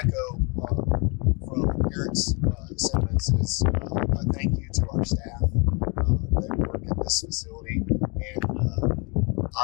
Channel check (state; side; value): quieter; right; 31.5 dB